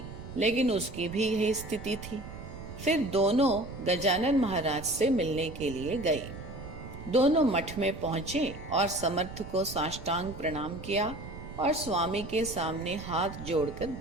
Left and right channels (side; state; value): right; noise; rumble, 12 dB below the sound